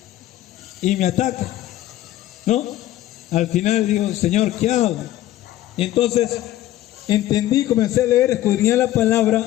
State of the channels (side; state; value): right; quieter; 14.2 dB